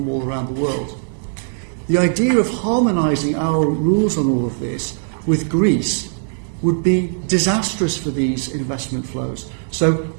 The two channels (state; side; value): silent; left; 66 dB below the other